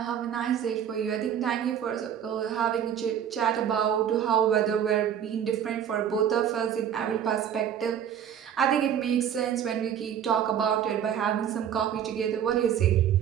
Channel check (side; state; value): left; quieter; 9.2 dB